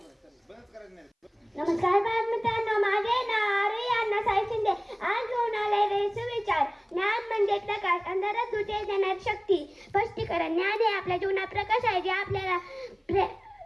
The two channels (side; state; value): both; identical; correlation 1.00